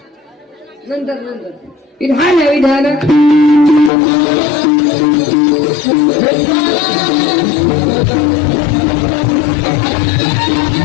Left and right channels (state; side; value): drops out; right; at 3.9 s